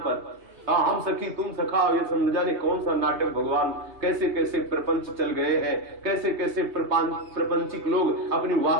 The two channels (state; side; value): late; left; 3.3 ms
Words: पर हम सखी तुम सखा, ये समझ जाने कौन सा नाटक। भगवान कैसे कैसे प्रपंच चल गए हैं, कैसे कैसे प्रपंचिक लोग अपनी